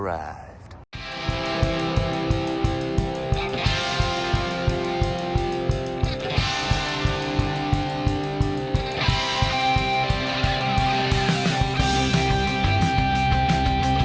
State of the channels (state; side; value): identical; both; correlation 1.00